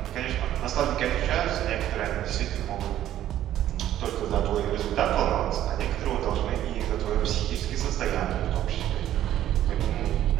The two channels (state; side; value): quieter; left; 12.3 dB